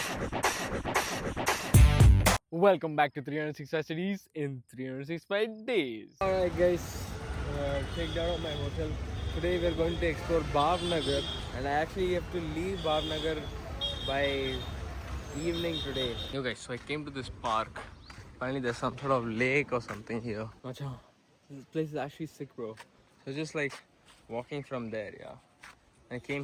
Welcome back to 365 Cities in 365 Days. Alright guys, checked out of my hotel. Today we're going to explore Bhavnagar, and I actually have to leave Bhavnagar by evening today. Yo guys, so I came to this park. Finally there's some sort of lake or something here. Macha, this place is actually sick, bro. So just like walking from there, yeah. I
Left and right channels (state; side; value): identical; both; correlation 1.00